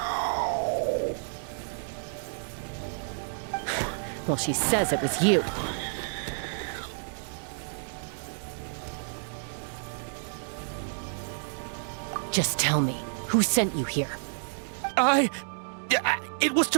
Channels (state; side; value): silent; left; digital silence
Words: Well, she says it was you. Just tell me, who sent you here? It was